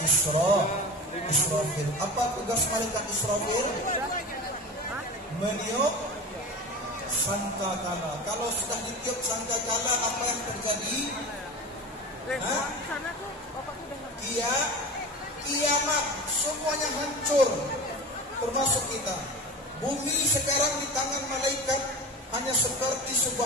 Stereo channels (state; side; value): normal; both; correlation 0.32